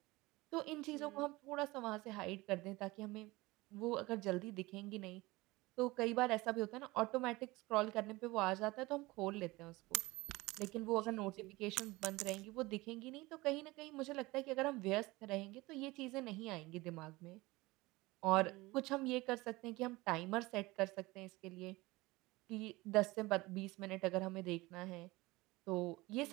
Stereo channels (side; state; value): left; quieter; 21.3 dB